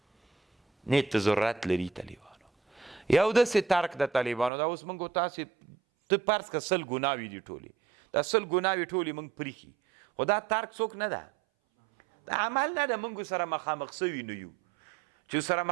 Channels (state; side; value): drops out; left; at 4.5 s